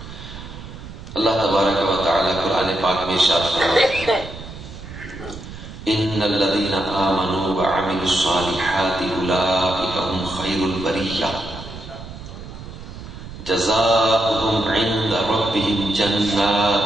اللہ تبارک و تعالی قرآن پاک میں ارشاد فرماتے ہیں ان الذين آمنوا وعملوا الصالحات اولئك هم خير البرية جزاؤهم عند ربهم جنات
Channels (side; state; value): right; noise; rumble, 13 dB below the sound